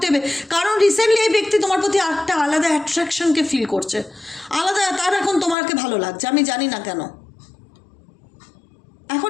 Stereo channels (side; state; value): right; drops out; at 5.6 s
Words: হবে। কারণ রিসেন্টলি এই ব্যক্তি তোমার প্রতি একটা আলাদা অ্যাট্রাকশনকে ফিল করছে, আলাদা, তার এখন তোমাকে ভালো লাগছে, আমি জানি না কেন। এখন